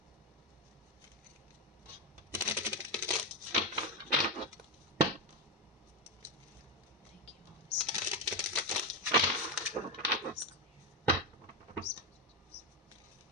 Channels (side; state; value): both; normal; correlation 0.09